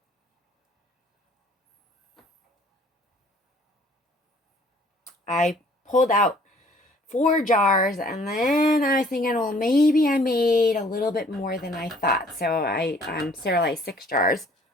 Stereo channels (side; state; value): both; normal; correlation 0.57